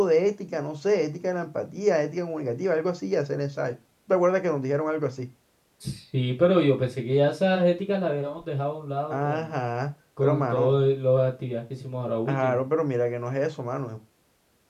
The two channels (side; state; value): both; identical; correlation 1.00